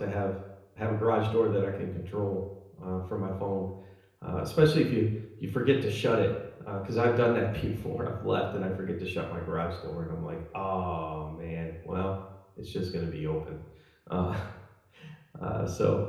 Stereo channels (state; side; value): identical; both; correlation 1.00